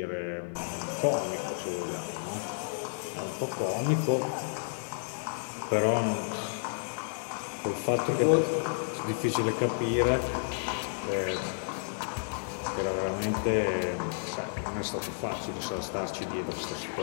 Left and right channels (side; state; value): right; silent; digital silence